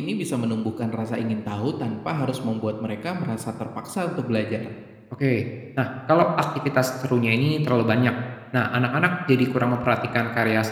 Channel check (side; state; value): both; identical; correlation 1.00